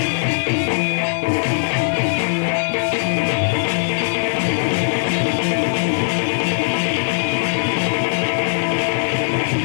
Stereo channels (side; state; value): right; silent; digital silence